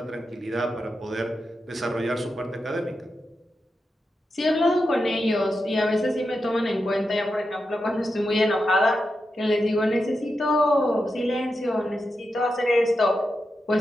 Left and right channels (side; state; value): both; normal; correlation 0.88